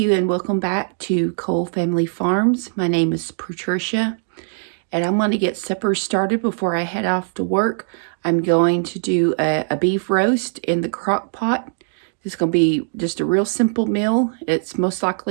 and welcome back to Cole Family Farms. My name is Patricia, and I'm going to get supper started before I head off to work. I'm going to do a beef roast in the crock pot. It's going to be just a real simple meal. It's most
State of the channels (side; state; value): left; silent; digital silence